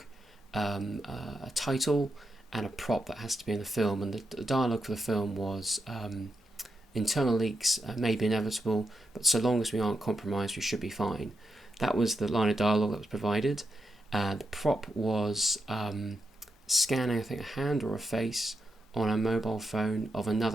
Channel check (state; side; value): normal; both; correlation 0.85